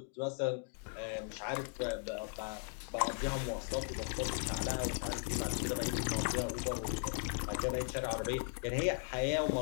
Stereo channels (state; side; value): silent; right; 53 dB below the other